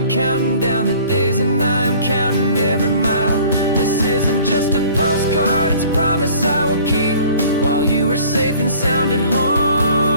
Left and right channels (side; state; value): both; inverted; correlation -0.51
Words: counting down the days and I'm counting every mile. This isn't just a postcard, it's a promise I will keep, while you are safe and sound at